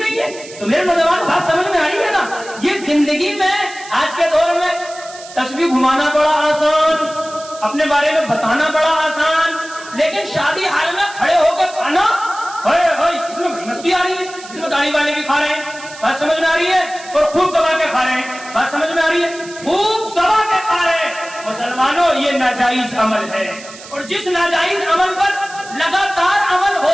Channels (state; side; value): noise; right; hiss, 17 dB below the sound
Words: ہے۔ تو میرے نوجوان بات سمجھ میں آ رہی ہے نا؟ یہ زندگی میں آج کے دور میں تسبیح گھمانا بڑا آسان، اپنے بارے میں بتانا بڑا آسان، لیکن شادی حال میں کھڑے ہو کے کھانا، اس میں مستی آ رہی ہے، اس میں داڑھی والے بھی کھا رہے ہیں، بات سمجھ میں آ رہی ہے، اور خوب دبا کے کھا رہے ہیں، بات سمجھ میں آ رہی ہے، خوب دبا کے کھا رہے ہیں۔ مسلمانوں یہ ناجائز عمل ہے، اور جس ناجائز عمل پر لگاتار عمل